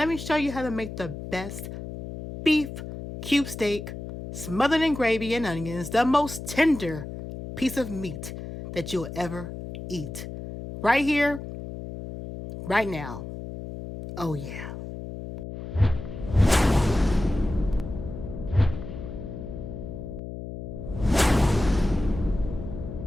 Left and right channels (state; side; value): noise; left; hum, 9 dB below the sound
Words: me show you how to make the best beef cube steak smothered in gravy and onions, the most tender piece of meat that you'll ever eat. Right here, right now. Oh yeah.